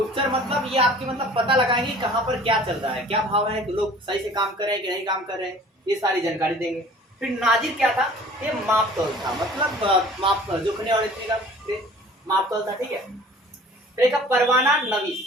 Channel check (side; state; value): both; normal; correlation 0.48